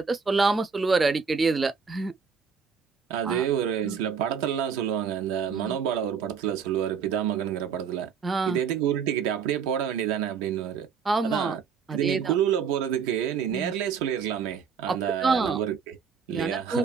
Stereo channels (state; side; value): quieter; left; 6.4 dB